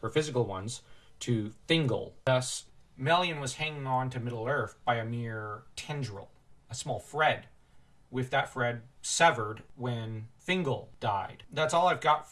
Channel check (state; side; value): identical; both; correlation 1.00